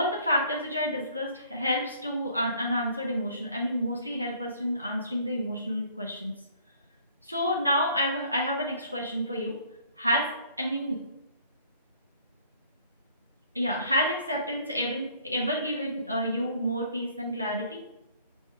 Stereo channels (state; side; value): inverted; both; correlation -0.58